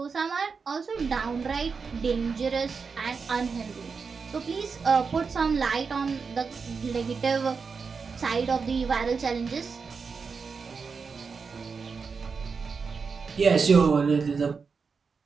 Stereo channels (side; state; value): left; quieter; 5.2 dB